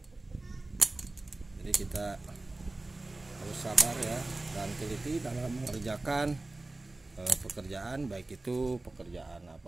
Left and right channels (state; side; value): quieter; left; 3.0 dB